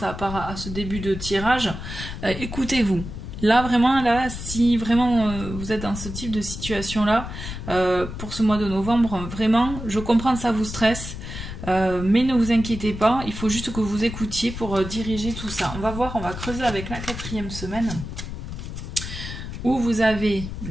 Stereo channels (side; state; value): left; noise; rumble, 8 dB below the sound